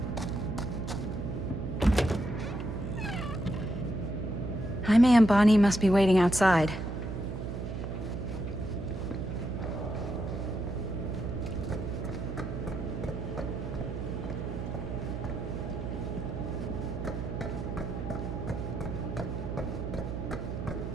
Jaime and Bonnie must be waiting outside.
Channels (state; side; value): noise; right; hum, 5 dB below the sound